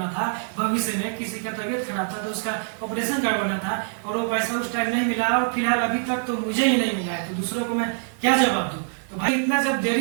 था भविष्य में, किसी का तबीयत खराब था तो उसका ऑपरेशन करवाना था, और वो पैसा उस टाइम नहीं मिला, और फिलहाल अभी तक तो मुझे ही नहीं मिला है, तो दूसरों को मैं क्या जवाब दूं? तो भाई इतना जब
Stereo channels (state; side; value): silent; left; 61 dB below the other